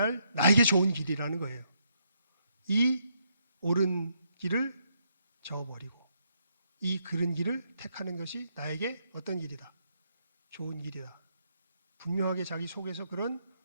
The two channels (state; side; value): inverted; both; correlation -0.75